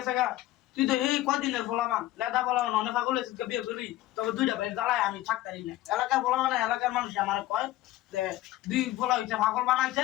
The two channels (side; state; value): right; quieter; 15.6 dB